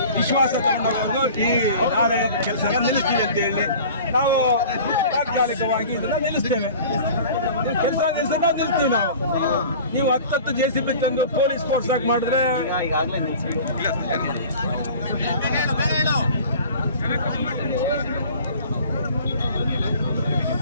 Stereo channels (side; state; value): both; inverted; correlation -0.43